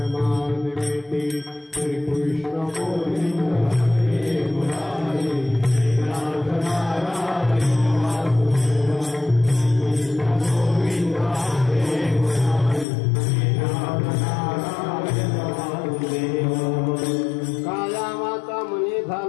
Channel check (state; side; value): drops out; right; at 12.9 s